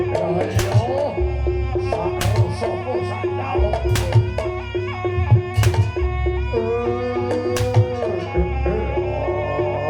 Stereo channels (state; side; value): identical; both; correlation 1.00